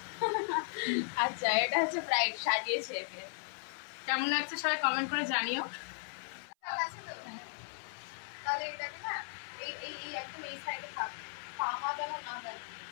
আচ্ছা, এটা হচ্ছে ব্রাইড সাজিয়েছে একে। কেমন লাগছে সবাই কমেন্ট করে জানিও। তাহলে এটাকে না এই এই এই একদম এই সাইডে থাক, পামা যেন না হয়,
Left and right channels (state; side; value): silent; right; 54 dB below the other